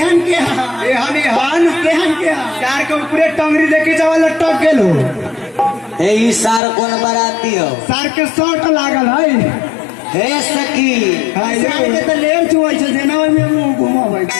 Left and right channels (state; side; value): drops out; right; at 6.6 s